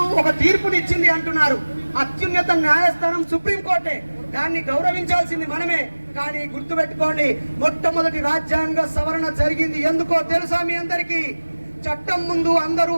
ఒక తీర్పునిచ్చింది అంటున్నారు. అత్యున్నత న్యాయస్థానం సుప్రీంకోర్టే, దాన్ని గౌరవించాల్సింది మనమే. కానీ గుర్తుపెట్టుకోండి, మొట్టమొదటి రాజ్యాంగ సవరణ జరిగింది ఎందుకో తెలుసా మీ అందరికీ? చట్టం ముందు అందరూ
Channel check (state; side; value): inverted; both; correlation -1.00